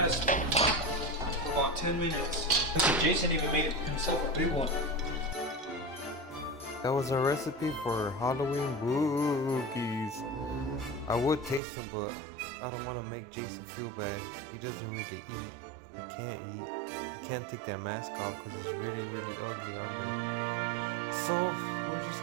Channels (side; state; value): left; drops out; at 11.6 s